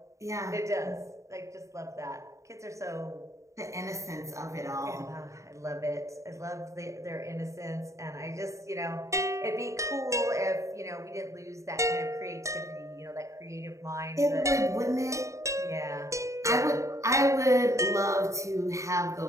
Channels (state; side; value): late; left; 0.15 ms